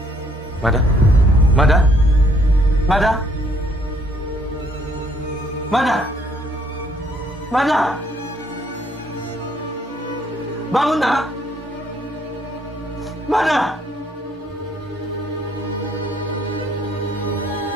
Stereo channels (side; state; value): both; normal; correlation 0.66